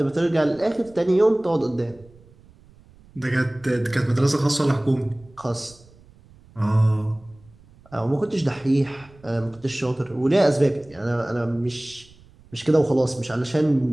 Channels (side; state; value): right; noise; rumble, 26 dB below the sound